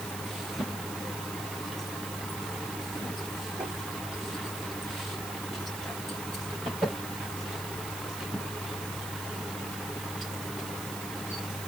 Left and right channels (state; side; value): noise; right; hiss, 6 dB below the sound